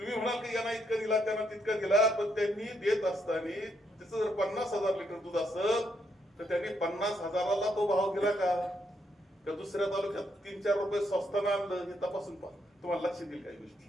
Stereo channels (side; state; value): both; normal; correlation 0.76